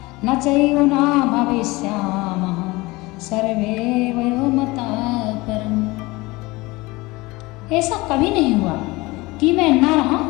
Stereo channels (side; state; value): right; quieter; 22.2 dB